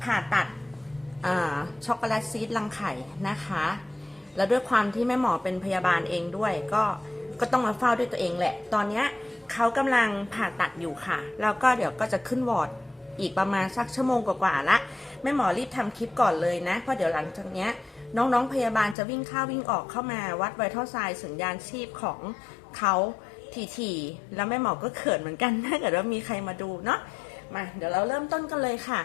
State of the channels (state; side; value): drops out; right; at 18.9 s